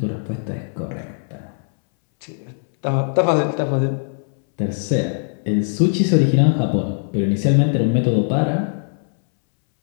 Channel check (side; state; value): right; silent; 66 dB below the other